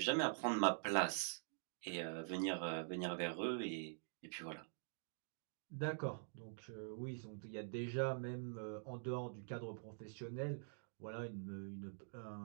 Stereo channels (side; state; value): left; silent; digital silence